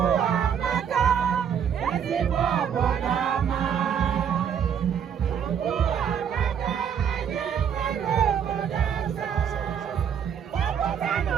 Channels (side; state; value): left; quieter; 8.1 dB